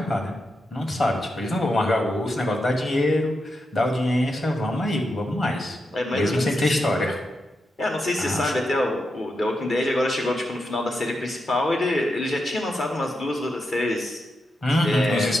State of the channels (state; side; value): normal; both; correlation 0.86